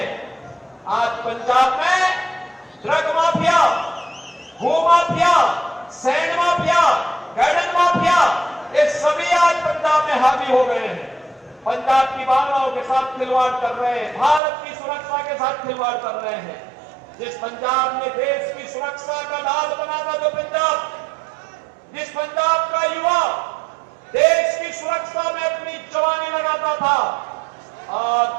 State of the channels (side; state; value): left; drops out; at 14.4 s